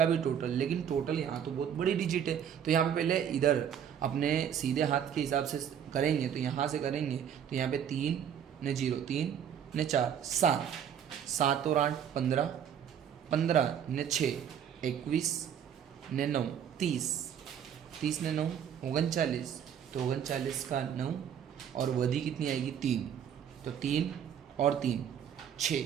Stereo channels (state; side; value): quieter; left; 8.8 dB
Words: भी टोटल, लेकिन टोटल यहाँ तो बहुत बड़ी डिजिट है, तो यहाँ पे पहले इधर अपने सीधे हाथ के हिसाब से करेंगे, तो यहाँ से करेंगे तो यहाँ पे 3 ने 0 3 ने 4 7 7 और 8 15 15 ने 6 21 ने 9 30 30 ने 9 39, तो 39 का 9 और वधी कितनी आएगी 3, तो 3 और 3